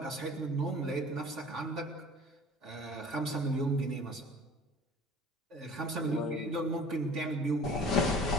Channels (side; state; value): both; normal; correlation 0.45